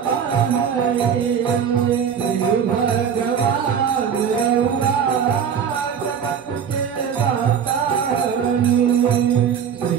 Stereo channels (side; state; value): left; quieter; 7.6 dB